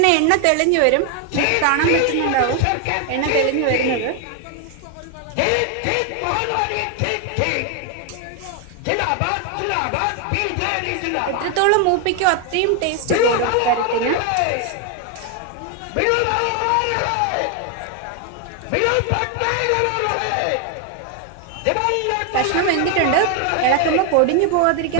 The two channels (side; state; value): both; different; correlation 0.01